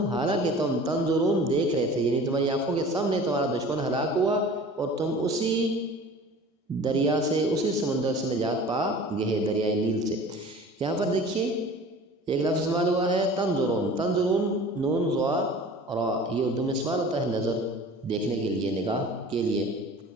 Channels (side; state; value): both; normal; correlation 0.42